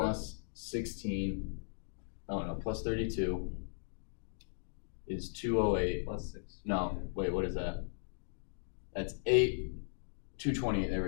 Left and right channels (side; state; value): right; silent; digital silence